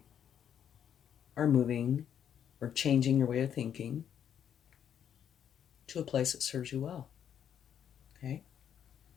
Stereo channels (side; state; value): right; quieter; 9.0 dB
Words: are moving or changing your way of thinking to a place that serves you well. Okay?